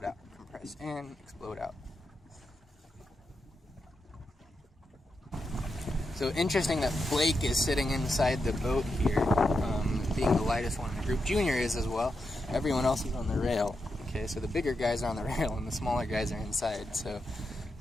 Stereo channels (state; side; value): normal; both; correlation 0.86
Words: out, compress in, explode out. So interesting that Blake is sitting inside the boat here, being the lightest one in the group. Junior is as well. Everyone else is on the rail. Okay, so the bigger guys are on the rail and the smaller guys are inside. So